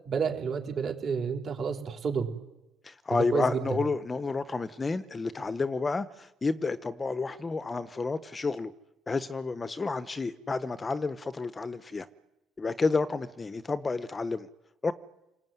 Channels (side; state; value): both; normal; correlation 0.87